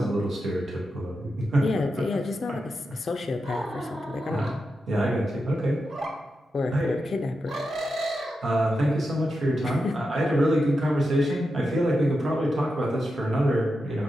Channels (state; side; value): normal; both; correlation 0.88